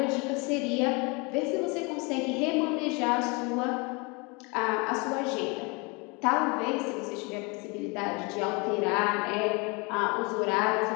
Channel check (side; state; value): right; quieter; 29.3 dB